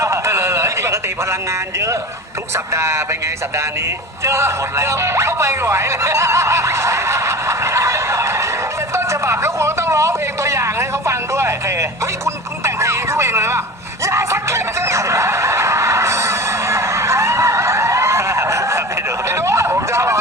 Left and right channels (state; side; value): normal; both; correlation 0.34